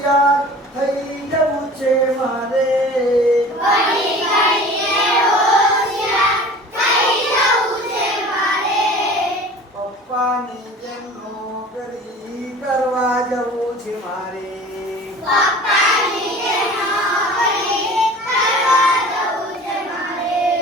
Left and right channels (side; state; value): both; normal; correlation 0.42